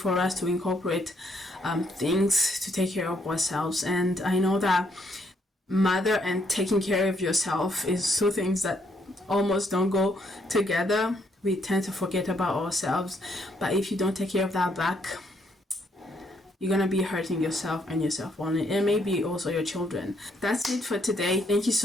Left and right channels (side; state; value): both; normal; correlation 0.72